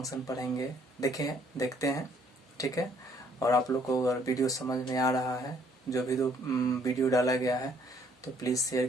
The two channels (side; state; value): both; normal; correlation 0.64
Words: पढ़ेंगे। देखते हैं, ठीक है। और आप लोग को अगर वीडियो समझ में आ रहा है, जो भी वीडियो डाला गया है, तो प्लीज़ शेयर